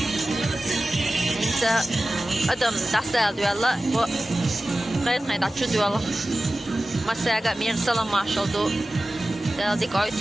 انت ادم دستال دولا و غير غير تشو دولا مساغا مير سلام ماشال دو ديك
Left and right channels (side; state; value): both; normal; correlation 0.95